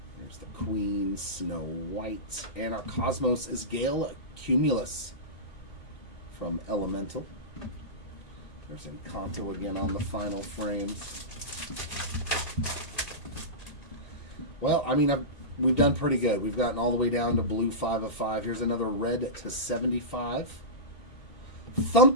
There's the Queen, Snow White. And our Cosmos is Gale Cumulus from Elemental. There's Encanto again on the final frames. Well, I mean, we've done pretty good. We've gotten all the way down to blue 5 of 5. Here's another red to 75.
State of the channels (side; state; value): right; late; 1.8 ms